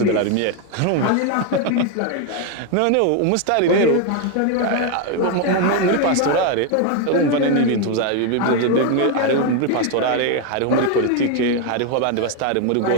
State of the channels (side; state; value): both; different; correlation 0.01